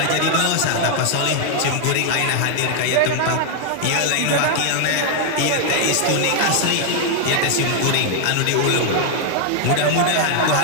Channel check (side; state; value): both; different; correlation 0.00